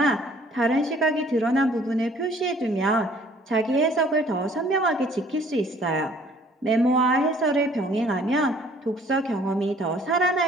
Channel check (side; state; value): both; normal; correlation 0.57